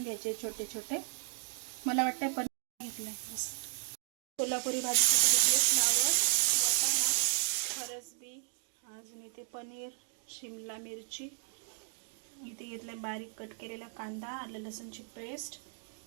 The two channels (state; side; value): silent; left; 55 dB below the other